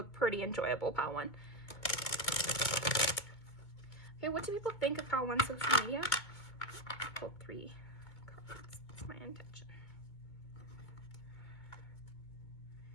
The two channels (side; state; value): right; late; 2.4 ms